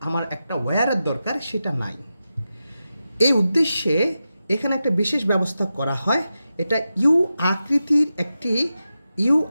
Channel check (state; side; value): inverted; both; correlation -0.91